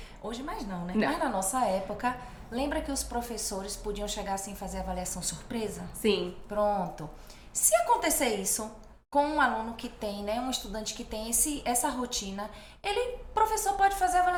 hoje mais não, né? Mas na nossa época, lembra que os professores podiam chegar assim e fazer avaliação surpresa? Sim. Pronto. Se acontecer isso com um aluno que tem, né, um estudante que tem essa rotina, o professor pode fazer a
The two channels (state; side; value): identical; both; correlation 1.00